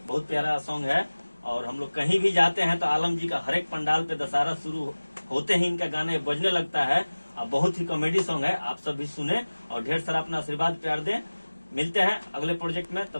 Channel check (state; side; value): inverted; both; correlation -1.00